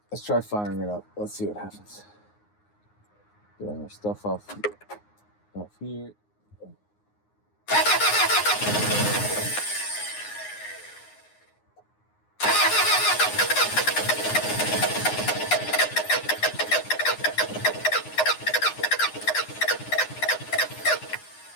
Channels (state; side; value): late; right; 9.6 ms